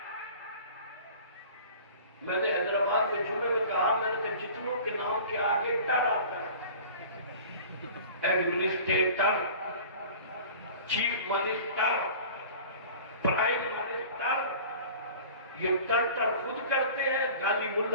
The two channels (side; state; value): both; inverted; correlation -0.42